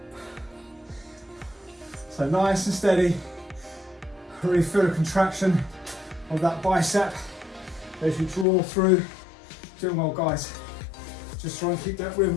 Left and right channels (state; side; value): drops out; right; at 8.5 s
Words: So nice and steady. Really feel the contraction of that bicep as you draw through. Doing well, guys. Just try and keep that